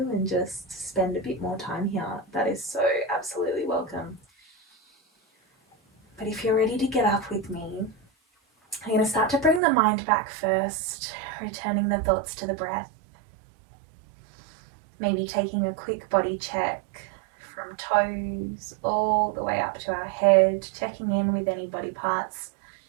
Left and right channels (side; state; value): left; drops out; at 9.6 s